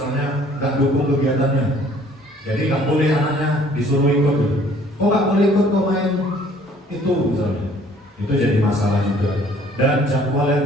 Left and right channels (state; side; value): normal; both; correlation 0.57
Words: nggak dukung kegiatannya. Jadi nggak boleh anaknya disuruh ikut. Oh nggak boleh ikut kok main itu misalnya. Itu jadi masalah juga. Dan jadwal